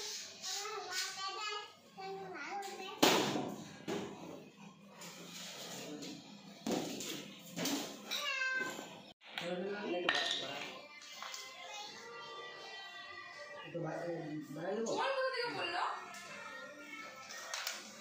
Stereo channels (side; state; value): both; identical; correlation 1.00